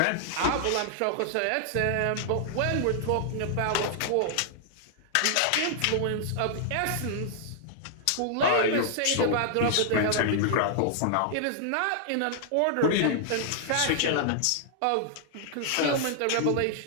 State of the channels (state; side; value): different; both; correlation -0.01